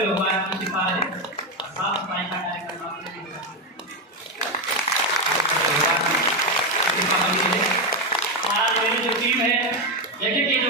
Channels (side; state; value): both; normal; correlation 0.08